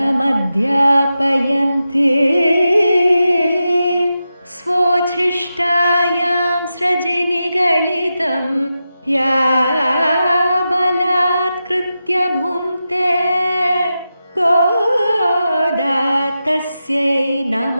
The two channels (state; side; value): inverted; both; correlation -0.90